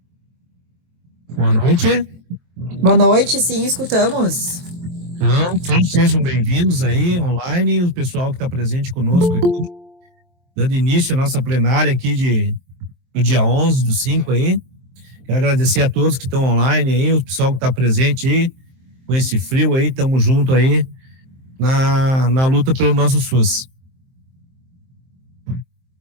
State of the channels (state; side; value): late; left; 23 ms